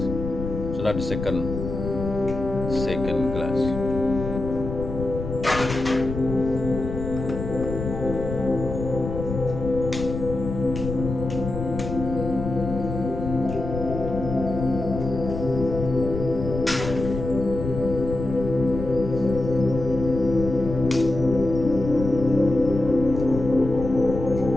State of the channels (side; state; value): left; noise; rumble, 6 dB below the sound